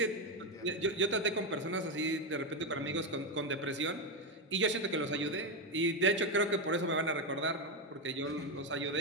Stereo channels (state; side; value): normal; both; correlation 0.08